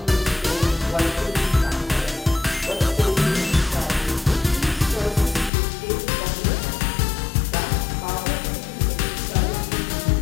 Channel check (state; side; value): drops out; right; at 5.5 s